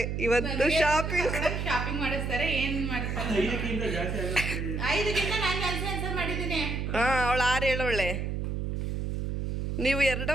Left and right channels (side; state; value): right; noise; hum, 2 dB below the sound